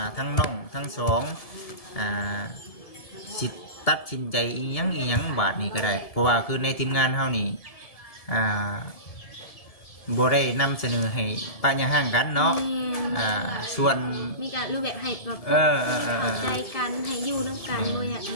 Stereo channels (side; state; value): right; late; 1.7 ms